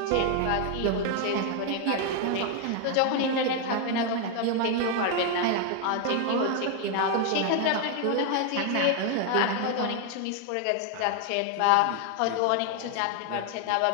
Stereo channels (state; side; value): different; both; correlation 0.01